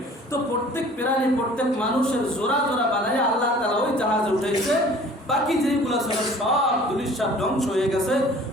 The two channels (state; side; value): normal; both; correlation 0.49